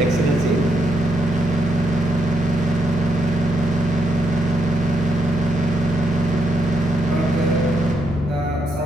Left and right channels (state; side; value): normal; both; correlation 0.79